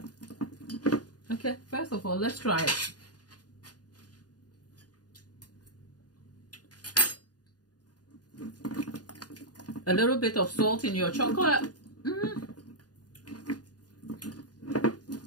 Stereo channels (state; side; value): late; right; 0.69 ms